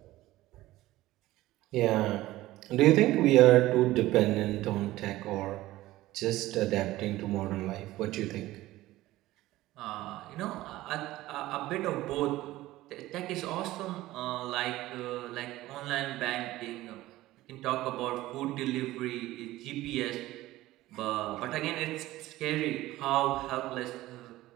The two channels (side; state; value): left; quieter; 16.7 dB